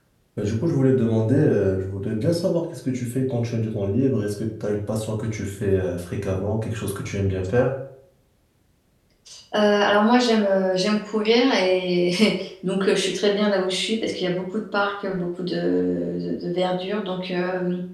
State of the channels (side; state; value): both; identical; correlation 1.00